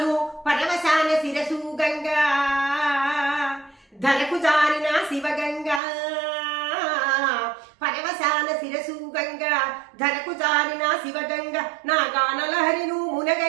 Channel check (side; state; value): left; drops out; at 5.8 s